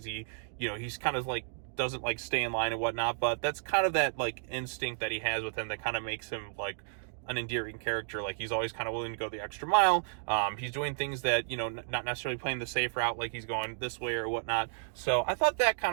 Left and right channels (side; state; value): left; silent; digital silence